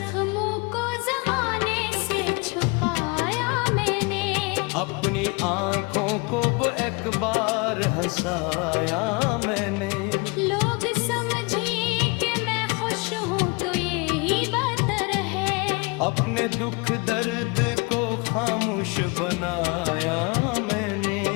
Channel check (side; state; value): right; quieter; 29.2 dB